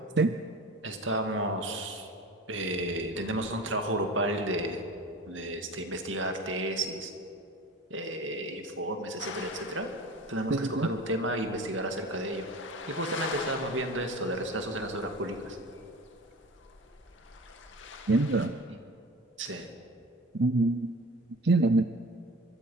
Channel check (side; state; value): both; normal; correlation 0.36